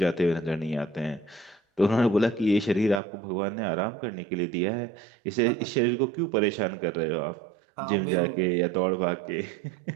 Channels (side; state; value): left; drops out; at 3.0 s